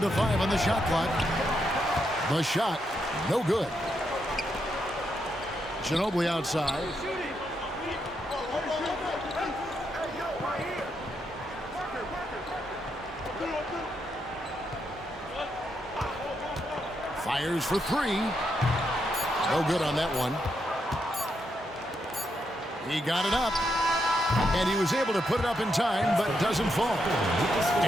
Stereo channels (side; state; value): both; normal; correlation 0.81